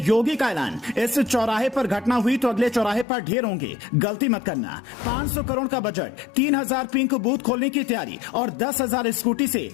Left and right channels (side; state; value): right; drops out; at 3.1 s